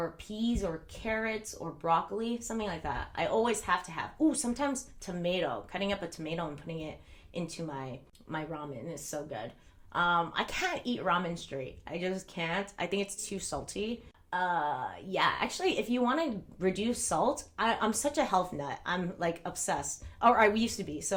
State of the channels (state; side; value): identical; both; correlation 1.00